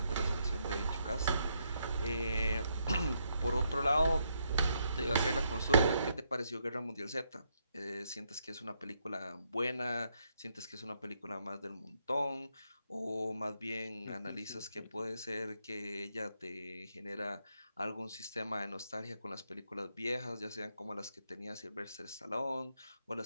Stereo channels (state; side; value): inverted; both; correlation -0.77